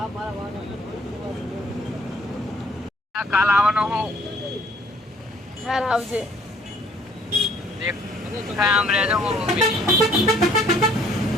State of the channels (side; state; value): both; normal; correlation 0.60